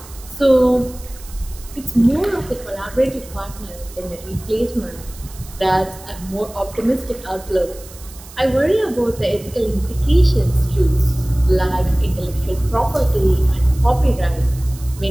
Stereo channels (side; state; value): right; noise; hiss, 19 dB below the sound